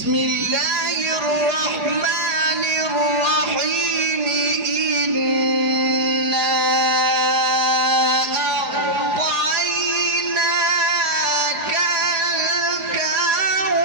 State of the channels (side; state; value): left; late; 4.8 ms